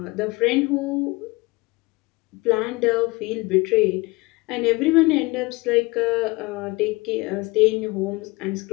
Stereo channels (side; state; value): right; quieter; 23.7 dB